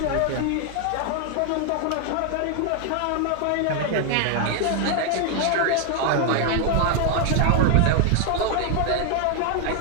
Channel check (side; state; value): both; different; correlation 0.00